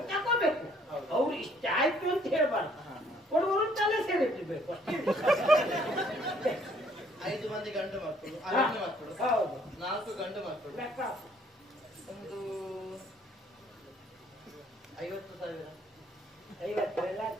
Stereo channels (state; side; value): normal; both; correlation 0.62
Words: ತಗೋಬೇಕು. ಅವ್ರು ಇಷ್ಟ ಆಯ್ತು ಅಂತ ಹೇಳ್ಬಾರ್ದು. ಕೊಡುವರು ತಲೆ ಸೇರಿಟ್ಟಿರ್ಬೇಕು ಅಷ್ಟೇ. 5 ಮಂದಿ ಗಂಡು ಮಕ್ಕಳು, ಮಕ್ಕಳು, ಹೌದು, 4 ಗಂಡು ಮಕ್ಕಳು, ಒಂದು 50,000. 50 ಎಲ್ಲ